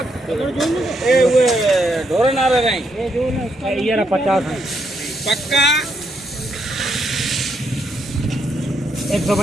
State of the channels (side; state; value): both; normal; correlation 0.77